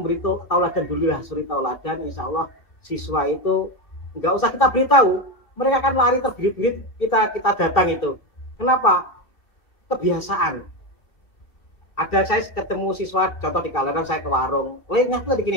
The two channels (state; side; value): late; right; 2.8 ms